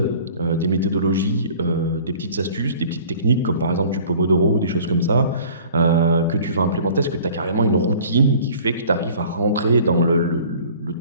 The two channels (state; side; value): inverted; both; correlation -0.49